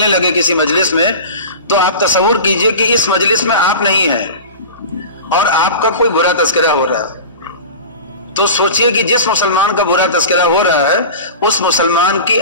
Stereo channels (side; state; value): both; inverted; correlation -0.32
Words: لگے کسی مجلس میں تو آپ تصور کیجئے کہ اس مجلس میں آپ نہیں ہیں اور آپ کا کوئی برا تذکرہ ہو رہا ہے. تو سوچئے کہ جس مسلمان کا برا تذکرہ ہو رہا ہے اس مسلمان کی